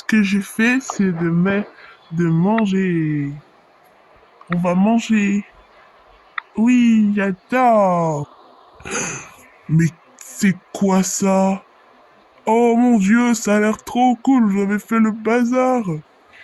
que j'ai fait, c'est de manger. On va manger. Oui, j'adore. Mais c'est quoi ça? Oh mon Dieu, ça a l'air trop cool, vous avez fait le bazar.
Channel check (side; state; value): both; identical; correlation 1.00